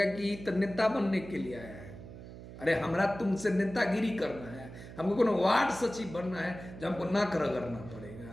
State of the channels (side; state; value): right; noise; hum, 14 dB below the sound